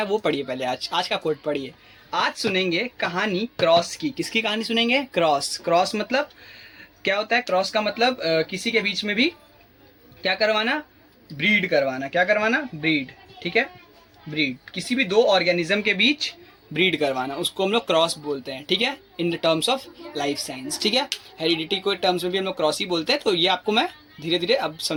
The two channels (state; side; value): identical; both; correlation 1.00